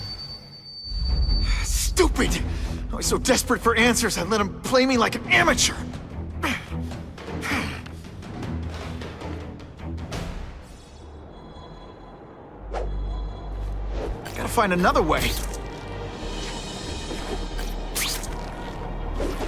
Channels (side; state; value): both; identical; correlation 1.00